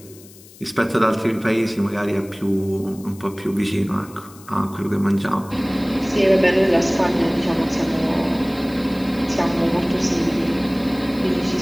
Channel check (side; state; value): left; noise; hiss, 22 dB below the sound